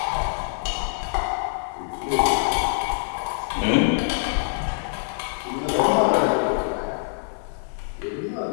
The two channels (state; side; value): silent; right; 62 dB below the other